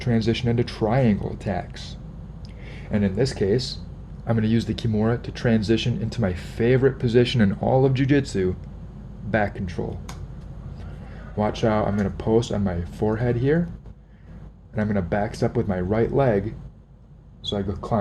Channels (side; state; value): both; identical; correlation 1.00